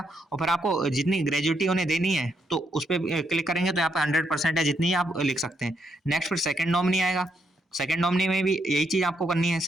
और फिर आपको जितनी ग्रेजुएटी उन्हें देनी है तो उस पर क्लिक करेंगे तो यहाँ पे 100% है जितनी आप लिख सकते हैं। नेक्स्ट फिर सेकंड नॉमिनी आएगा। सेकंड नॉमिनी में भी यही चीज़ आपको करनी है।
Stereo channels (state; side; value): normal; both; correlation 0.77